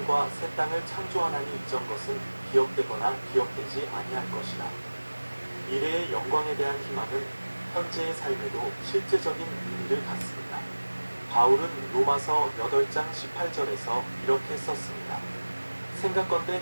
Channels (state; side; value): inverted; both; correlation -1.00